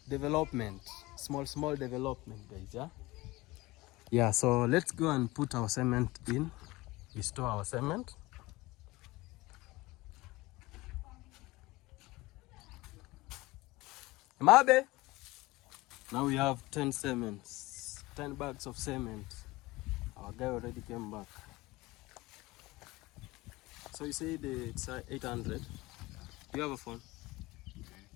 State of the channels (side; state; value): right; quieter; 20.6 dB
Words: development, small development, guys. Yeah. So let's go and put our cement in. We store our cement. Mabe. Now we have 10 bags of cement. Our guy already came back. So you say it's 800. Do you have a phone?